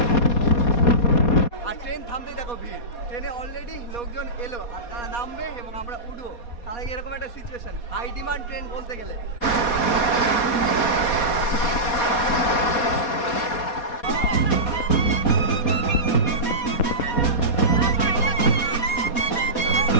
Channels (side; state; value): right; late; 4.2 ms